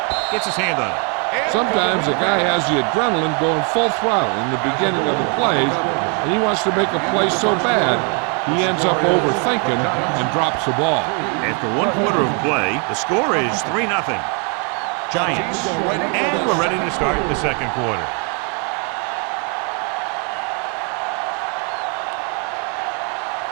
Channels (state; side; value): quieter; left; 37.3 dB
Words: Gets his hand on it. Sometimes a guy has the adrenaline going full throttle in the beginning of the plays, and he wants to make a play so bad, he ends up overthinking and drops the ball. After 1 quarter of play, the score is 3-0. Giants. And we're ready to start the second quarter.